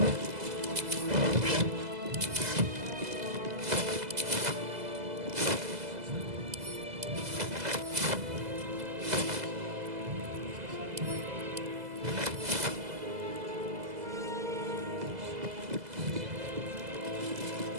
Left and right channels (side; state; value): left; late; 2.0 ms